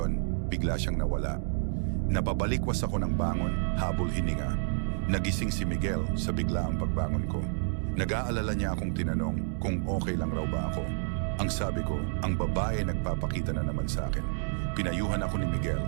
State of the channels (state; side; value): silent; left; digital silence